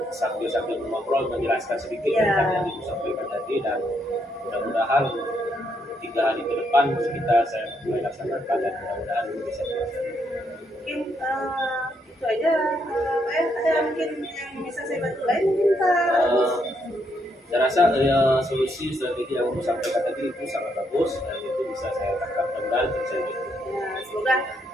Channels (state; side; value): normal; both; correlation 0.76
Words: sambil ngobrol menjelaskan sedikit tentang yang ibu sampaikan tadi, dan mudah-mudahan 3 hari ke depan saya mulai laksanakan dan mudah-mudahan ini bisa berhasil. Mungkin itu aja Pak ya. Ada mungkin yang bisa saya bantu lain mungkin Pak? Saya rasa solusi strategi yang ibu sampaikan tadi itu sangat bagus dan itu bisa saya tangkap dan bisa gitu. Semoga